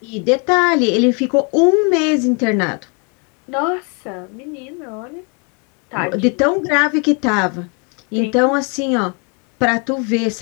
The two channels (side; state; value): right; quieter; 35.4 dB